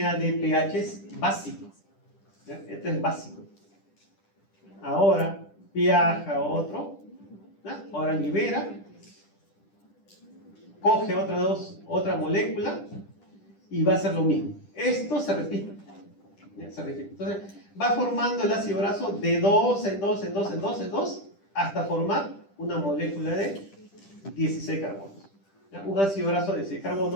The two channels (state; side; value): late; right; 10 ms